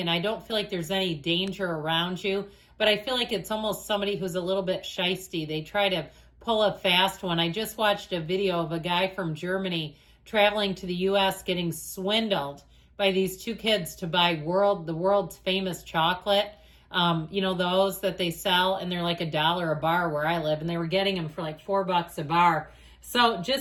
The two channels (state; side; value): identical; both; correlation 1.00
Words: and I don't feel like there's any danger around you. But I feel like it's almost somebody who's a little bit shisty. They try to pull a fast one. I just watched a video of a guy from Germany traveling to the U.S. getting swindled by these two kids to buy the world's famous chocolate. Those that they sell, and they're like $1 a bar where I live, and they were getting them for like $4 a bar. So